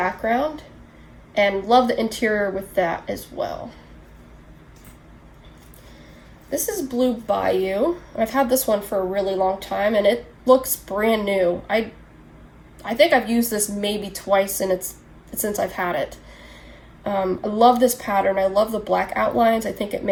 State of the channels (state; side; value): identical; both; correlation 1.00